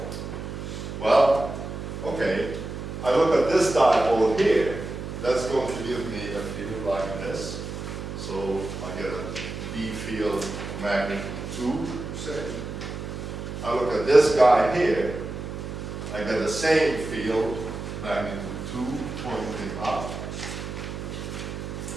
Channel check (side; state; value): right; noise; hum, 7 dB below the sound